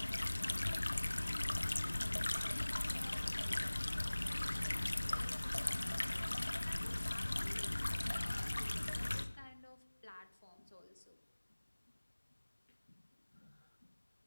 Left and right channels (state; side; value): inverted; both; correlation -1.00